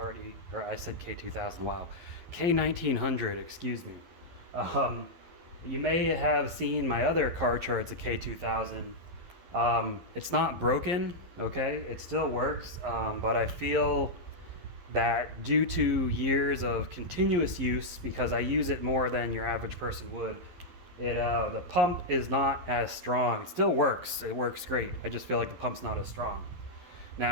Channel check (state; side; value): late; left; 11 ms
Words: said K2000, wow. K1900, excuse me. You may have seen my other Karcher, it's a K2000. It's not broken, okay? It still works, but I feel that due to years of continuous use, because I use it more than your average person would, the pump is not as strong. It still works. It works great. I just feel like the pump's not as strong.